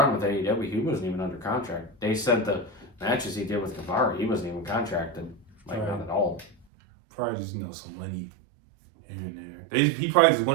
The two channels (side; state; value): left; drops out; at 6.7 s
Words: with AEW, he wasn't even under contract. They said the matches he did with Guevara, he wasn't even contracted. Like, not at all. Probably just, some money here and there. He probably just